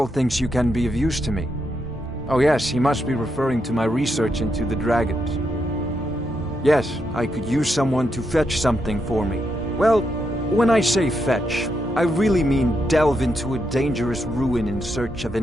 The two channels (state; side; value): normal; both; correlation 0.82